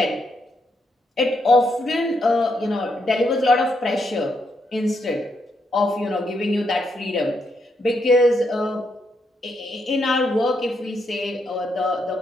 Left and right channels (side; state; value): both; normal; correlation 0.79